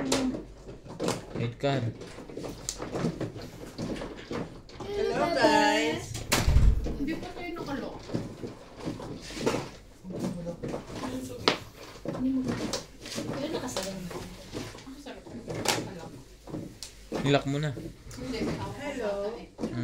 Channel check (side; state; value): both; identical; correlation 1.00